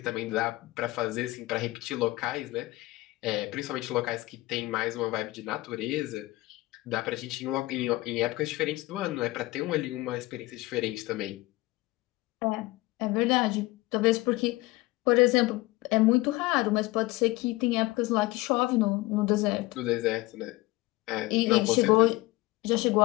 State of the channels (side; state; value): right; quieter; 20.1 dB